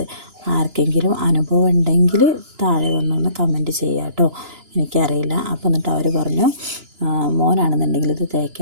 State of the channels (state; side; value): late; left; 2.9 ms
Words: ആർക്കെങ്കിലും അനുഭവം ഉണ്ടെങ്കിൽ താഴെ വന്നൊന്ന് കമൻറ്റ് ചെയ്യാം കേട്ടോ, എനിക്കറിയില്ല. അപ്പോൾ എന്നിട്ട് അവർ പറഞ്ഞു മോനാണെന്നുണ്ടെങ്കിൽ ഇത്